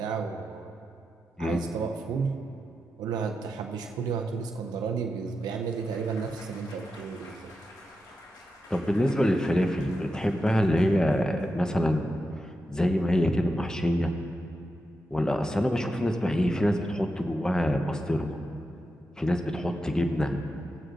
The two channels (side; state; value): both; normal; correlation 0.88